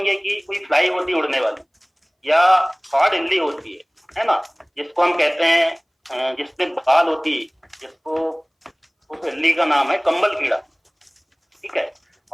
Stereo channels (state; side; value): identical; both; correlation 1.00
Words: कि कोई फ्लाई होती है उड़ने वाली, या हार्ड इल्ली होती है ना, जिसको हम कहते हैं जिसपे बाल होती है, जिसको उस इल्ली का नाम है कंबल कीड़ा, ठीक है।